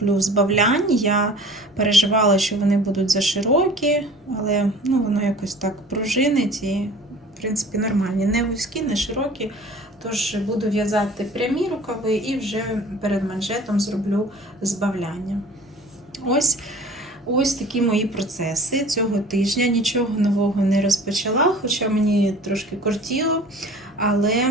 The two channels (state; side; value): normal; both; correlation 0.45